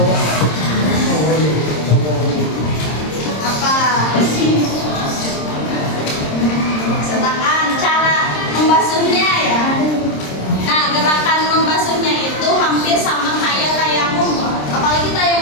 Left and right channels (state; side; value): late; right; 26 ms